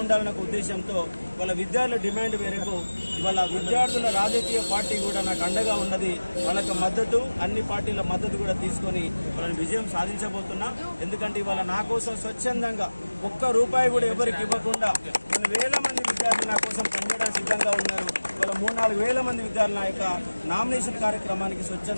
ఉండాలన్న ఉద్దేశంతో వాళ్ళ విద్యార్థుల డిమాండ్ మేరకు ఇవాళ విద్యార్థుల రాజకీయ పార్టీ కూడా నాకు అండగా ఉన్నది. వాళ్ళకి మద్దతు, అన్ని పార్టీల మద్దతు కూడా తీసుకొని వాళ్ళని విజయం సాధించబోతున్నా. ఎందుకంటే ఇవాళ నా కోసం స్వచ్ఛందంగా ₹1 కూడా ఎవరికి ఇవ్వకుండా కొన్ని వేల మంది విద్యార్థులు నా కోసం పనిచేయడానికి సిద్ధంగా ఉన్నారు. ఇవాళ 3-4 వేల మంది విద్యార్థులు నా యొక్క నామినేషన్ కార్యక్రమానికి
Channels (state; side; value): inverted; both; correlation -1.00